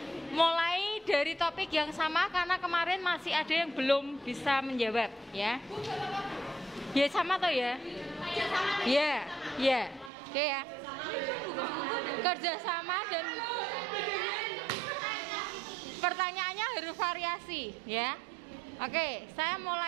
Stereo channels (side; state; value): left; drops out; at 10.1 s